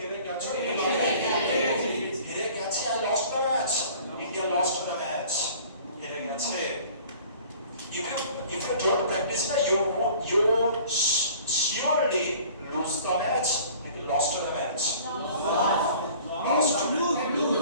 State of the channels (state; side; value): inverted; both; correlation -0.49